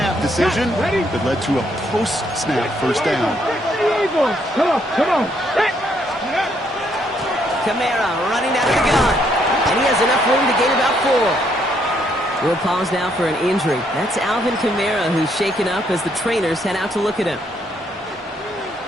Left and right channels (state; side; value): normal; both; correlation 0.72